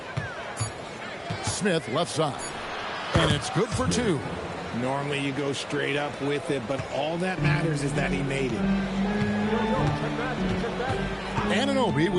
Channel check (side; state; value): both; identical; correlation 1.00